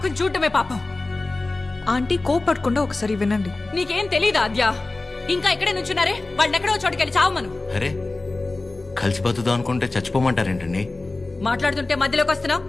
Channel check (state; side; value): quieter; right; 3.2 dB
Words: చూడటమే పాపం. ఆంటీ కోపడకుండా ఒకసారి వినండి. నీకేం తెలీదా అద్యా? ఇంకా ఇక్కడే నుంచున్నారే, వాళ్ళని ఎక్కడో చోటుకెళ్ళి చావమను. అరే, కలిసి బతుకుదాం అనుకుంటే చచ్చిపోమంటారేంటండి? మాట్లాడుతుంటే మధ్యలోకి వస్తున్నావు.